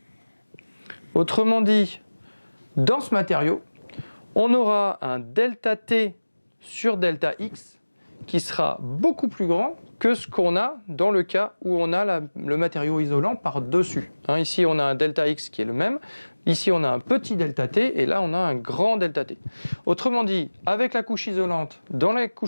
Autrement dit, dans ce matériau, on aura un delta T sur delta X qui sera beaucoup plus grand que ce qu'on a dans le cas où on a le matériau isolant par-dessus. Ici, on a un delta X qui est le même. Ici, on a un petit delta T et là, on a un grand delta T. Autrement dit, avec la couche isolante, dans la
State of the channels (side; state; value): both; inverted; correlation -1.00